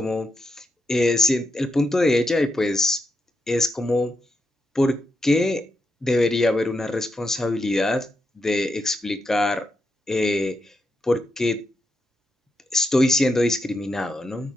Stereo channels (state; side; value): normal; both; correlation 0.84